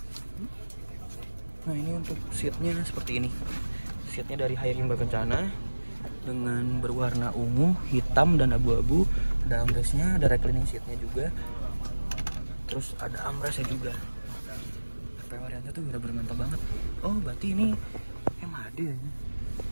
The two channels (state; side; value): inverted; both; correlation -1.00